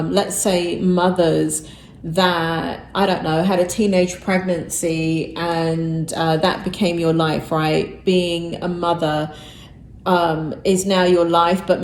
say, mothers that, I don't know, had a teenage pregnancy and that became your life, right? Being a mother is now your life, but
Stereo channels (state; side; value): identical; both; correlation 1.00